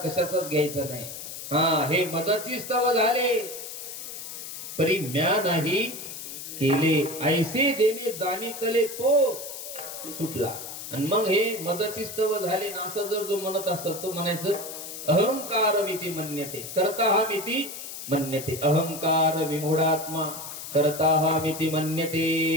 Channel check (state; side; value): noise; left; hiss, 9 dB below the sound